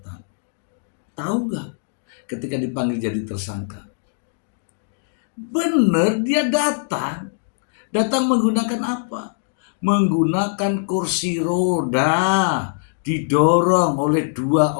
Tahu nggak ketika dipanggil jadi tersangka? Bener dia datang menggunakan apa? Menggunakan kursi roda, didorong oleh 2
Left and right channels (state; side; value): silent; right; digital silence